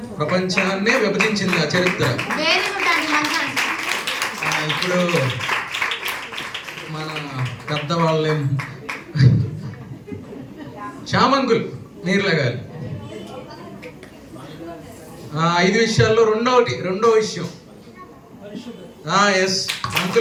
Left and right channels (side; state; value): both; identical; correlation 1.00